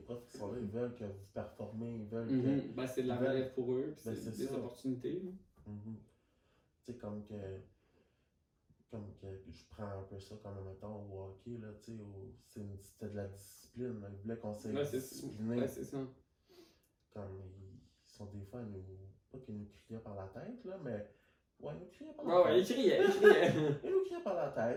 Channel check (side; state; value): both; identical; correlation 1.00